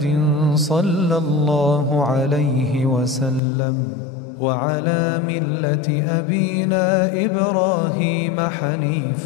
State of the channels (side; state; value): right; drops out; at 3.4 s